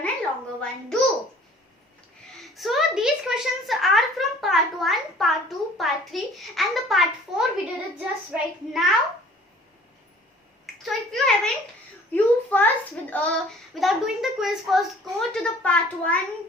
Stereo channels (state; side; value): normal; both; correlation 0.52